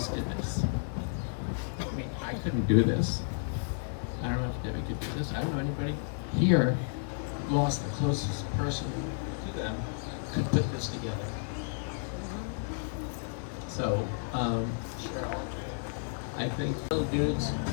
did this. I mean, I couldn't do this. I don't know if Debbie could do this. I don't know anybody here lost the closest person to them could put this together. So, Cheryl, I think little dudes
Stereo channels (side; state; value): right; silent; 56 dB below the other